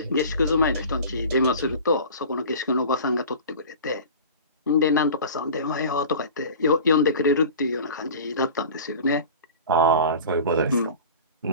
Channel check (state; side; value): inverted; both; correlation -0.38